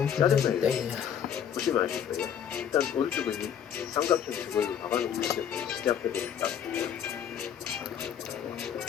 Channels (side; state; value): right; quieter; 8.7 dB